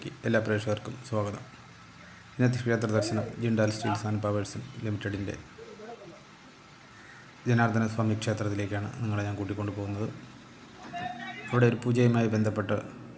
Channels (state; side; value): identical; both; correlation 1.00